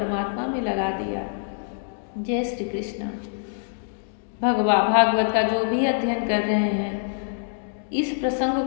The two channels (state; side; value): silent; right; digital silence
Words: में लगा दिया। जय श्री कृष्ण। भागवत का जो भी अध्ययन कर रहे हैं, इस प्रसंग